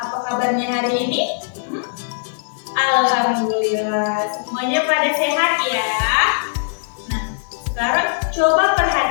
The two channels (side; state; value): right; silent; digital silence